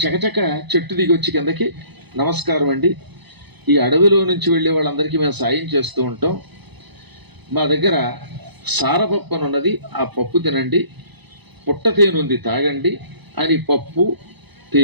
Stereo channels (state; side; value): late; left; 1.0 ms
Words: చకచక చెట్టు దిగి వచ్చి కిందకి, నమస్కారం అండి, ఈ అడవిలో నుంచి వెళ్ళే వాళ్ళందరికీ మేము సాయం చేస్తూ ఉంటాం. మా దగ్గర సారపప్పు అని ఉన్నది, ఆ పప్పు తినండి, పుట్ట తేనె ఉంది తాగండి అని పప్పు,